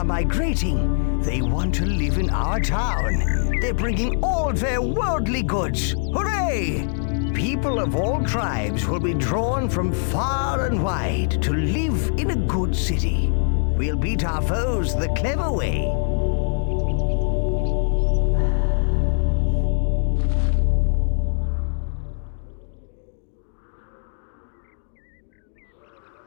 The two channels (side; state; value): right; silent; digital silence